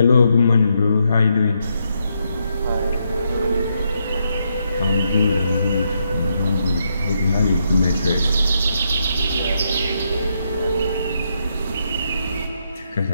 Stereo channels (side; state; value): both; inverted; correlation -0.79